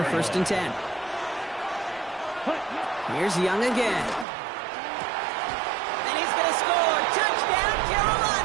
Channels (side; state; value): left; drops out; at 4.2 s